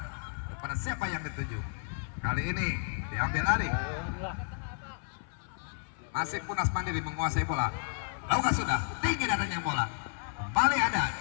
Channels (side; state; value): right; silent; 56 dB below the other